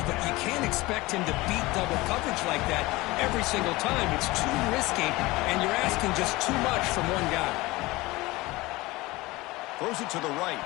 but you can't expect him to beat double coverage like that every single time. It's too risky, and you're asking just too much from one guy. Throws it to the right.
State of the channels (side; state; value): right; quieter; 20.8 dB